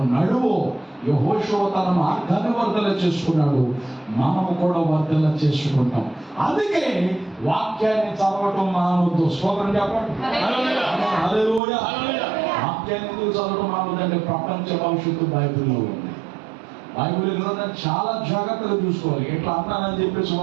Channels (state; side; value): drops out; left; at 11.6 s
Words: నడువు. యెహోషువ తన మార్గాన్ని వర్ధల చేసుకున్నాడు, మనము కూడా వర్ధల చేసుకుంటాం. అందుకే వాక్యాన్ని చదవటం మానవద్దు. స్తోత్రం చెప్పండి. హల్లెలూయా. వాక్యాన్ని ఎందుకు చదవటం మానవద్దంటే ప్రపంచ భవిష్యత్తు బైబిల్లో ఉంది. బైబిల్ గ్రంథం చాలా జాగ్రత్తగా చూసుకోవాలి. ఎట్లా అన్నానని చెప్పేసి